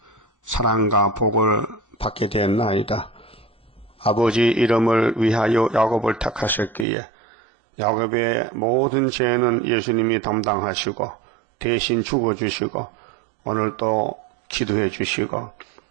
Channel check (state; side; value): drops out; left; at 6.9 s